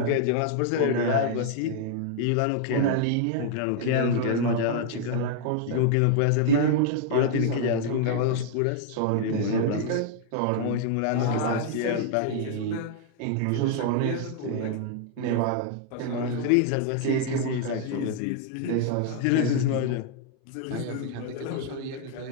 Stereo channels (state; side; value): different; both; correlation -0.01